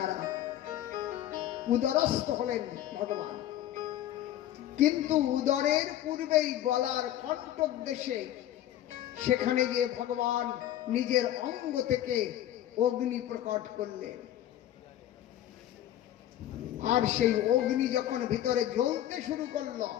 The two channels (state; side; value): quieter; right; 12.4 dB